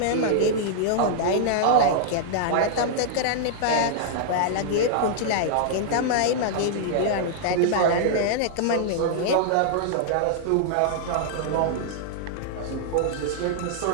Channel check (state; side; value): different; both; correlation -0.01